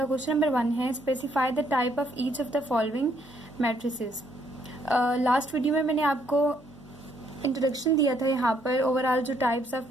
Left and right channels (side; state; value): both; normal; correlation 0.70